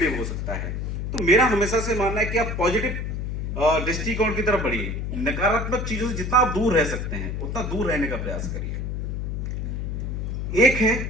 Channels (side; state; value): left; noise; hum, 3 dB below the sound